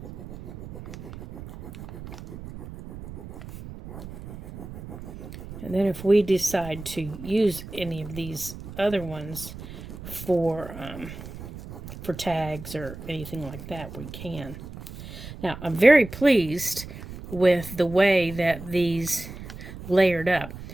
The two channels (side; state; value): right; noise; rumble, 12 dB below the sound